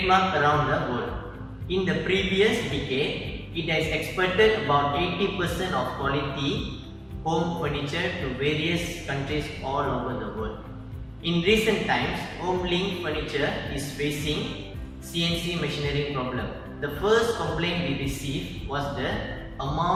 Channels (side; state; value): both; identical; correlation 1.00